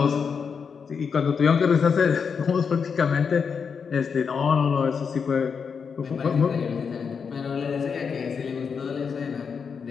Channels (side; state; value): right; quieter; 6.1 dB